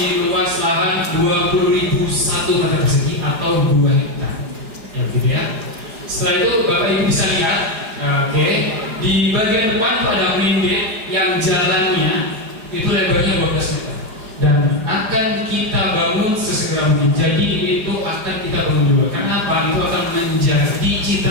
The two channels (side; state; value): left; late; 4.9 ms